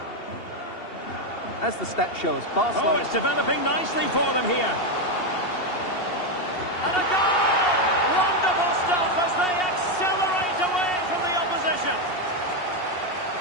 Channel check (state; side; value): late; right; 2.7 ms